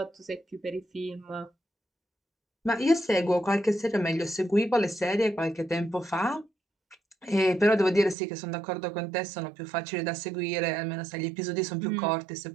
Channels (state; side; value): drops out; left; at 8.2 s